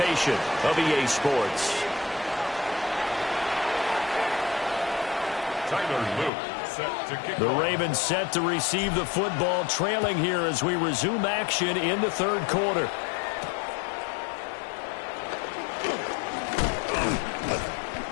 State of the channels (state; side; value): drops out; right; at 6.3 s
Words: of EA Sports. Tyler Luke set to kick The off. Ravens set to receive the football, trailing here as we resume action in the third quarter.